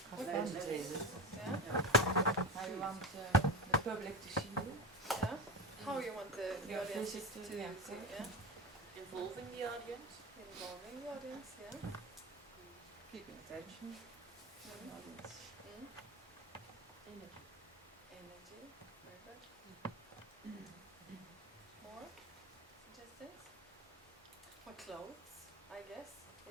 What Entertainment. Yeah. How you want the public to see you. Yeah. How you want the Your audience to visit to see? the Yeah. Involving the audience. Involving the audience. Yeah. Keeping attention. Mm. Audience. Mm. Energy. Energy. Very good. More suggestions? What clothes, I guess,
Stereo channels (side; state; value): both; normal; correlation 0.21